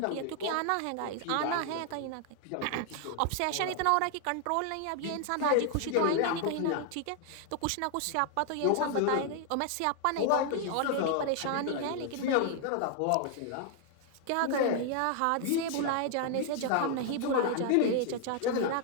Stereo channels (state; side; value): different; both; correlation 0.00